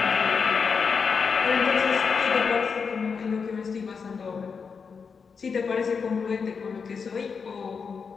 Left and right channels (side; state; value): right; quieter; 5.6 dB